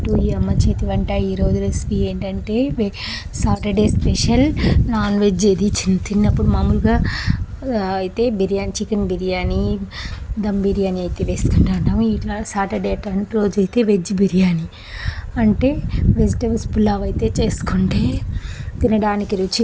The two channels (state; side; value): identical; both; correlation 1.00